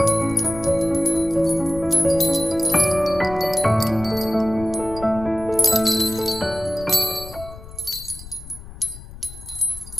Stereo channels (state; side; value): noise; left; rumble, 15 dB below the sound